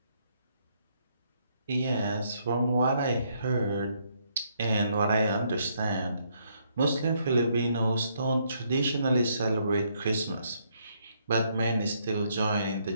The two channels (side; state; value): both; inverted; correlation -0.72